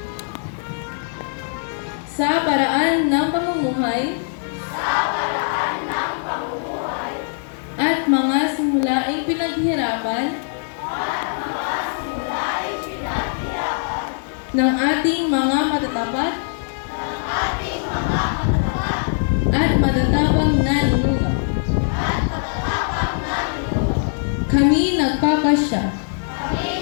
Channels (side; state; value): right; silent; digital silence